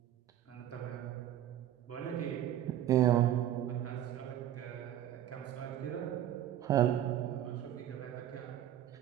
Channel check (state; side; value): quieter; left; 11.7 dB